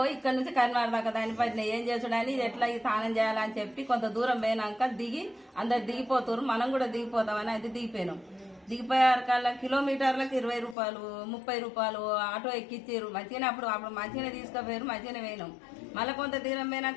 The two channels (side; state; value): right; drops out; at 10.8 s